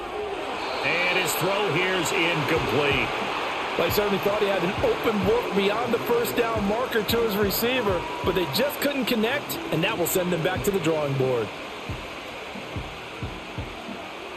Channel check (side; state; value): both; identical; correlation 1.00